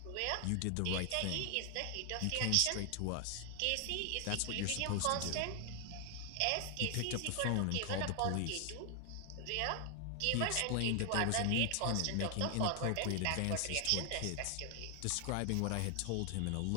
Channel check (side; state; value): both; different; correlation 0.00